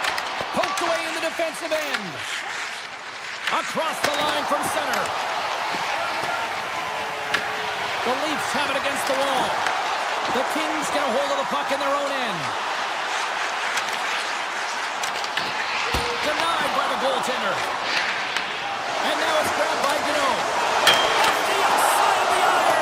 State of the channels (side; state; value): both; identical; correlation 1.00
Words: Poked away in the defensive end. Across the line from center. The Leafs have it against the wall. The Kings get a hold of the puck in their own end. Denied by the goaltender. And now it's grabbed by Gano. Off the outside of the